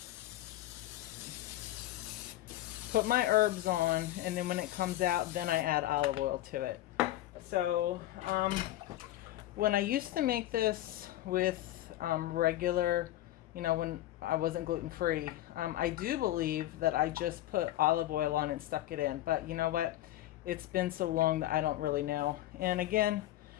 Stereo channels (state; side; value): quieter; right; 14.6 dB